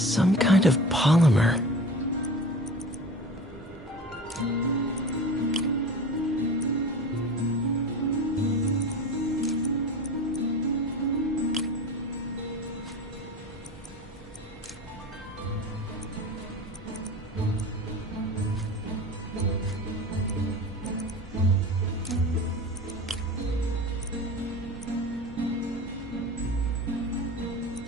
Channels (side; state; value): both; normal; correlation 0.35